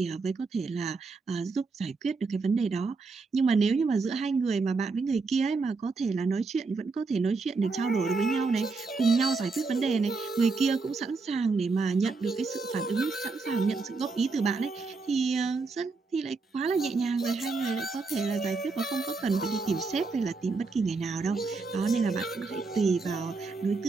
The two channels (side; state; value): left; quieter; 4.1 dB